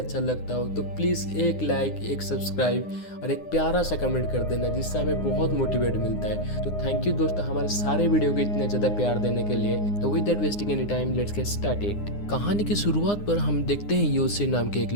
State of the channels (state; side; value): late; right; 9.8 ms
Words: लगता हो तो प्लीज़ एक लाइक, एक सब्सक्राइब और एक प्यारा सा कमेंट कर देना, जिससे हमें बहुत मोटिवेट मिलता है। तो थैंक यू दोस्तों हमारे सारे वीडियो को इतने ज़्यादा प्यार देने के लिए। तो with that wasting any time, let's get started. कहानी की शुरुआत पर हम देखते हैं योसे नाम के एक